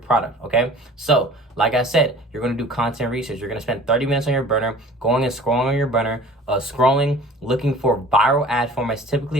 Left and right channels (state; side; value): normal; both; correlation 0.45